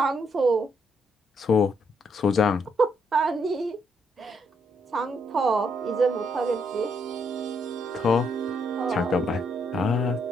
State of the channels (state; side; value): normal; both; correlation 0.74